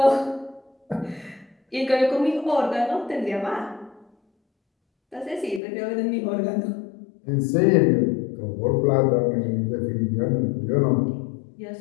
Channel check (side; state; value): right; drops out; at 5.6 s